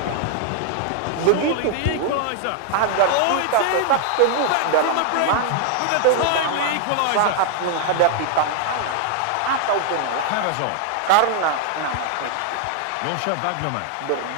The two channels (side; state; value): both; different; correlation 0.00